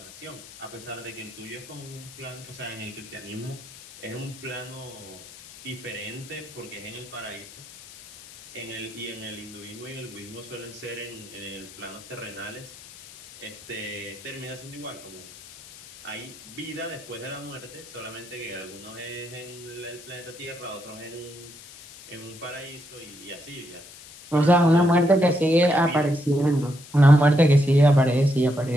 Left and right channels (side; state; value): left; noise; hiss, 18 dB below the sound